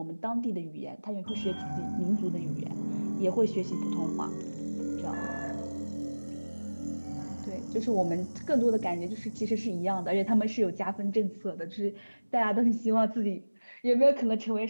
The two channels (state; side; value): inverted; both; correlation -1.00